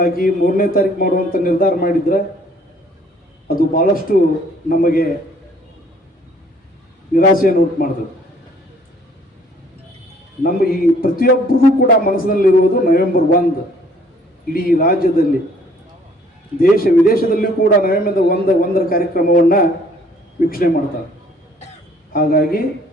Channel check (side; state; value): both; normal; correlation 0.59